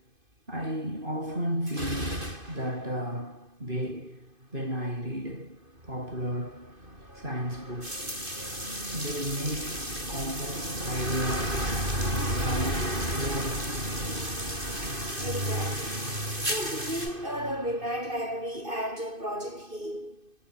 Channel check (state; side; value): late; left; 2.5 ms